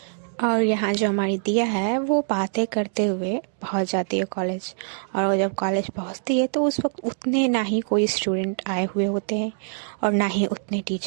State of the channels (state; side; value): silent; left; digital silence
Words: और यहाँ जो हमारी दिया है वो बातें करते हुए पहुँच जाती है कॉलेज। और वो जब कॉलेज पहुँचती है तो उस वक्त उतने ना ही कोई स्टूडेंट आए हुए होते हैं और ना ही उतने